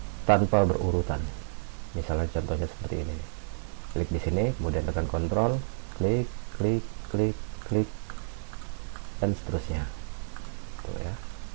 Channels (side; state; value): left; silent; 58 dB below the other